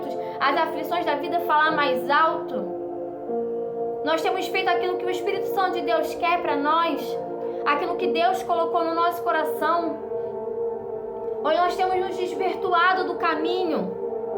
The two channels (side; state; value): both; identical; correlation 1.00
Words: as aflições da vida falar mais alto? Nós temos feito aquilo que o Espírito Santo de Deus quer para nós, aquilo que Deus colocou no nosso coração, ou nós temos nos desvirtuado do caminho,